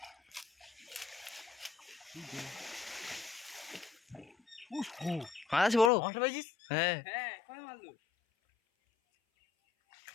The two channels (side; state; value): right; drops out; at 5.9 s